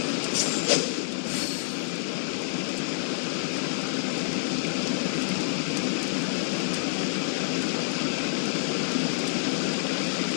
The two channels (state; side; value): silent; right; digital silence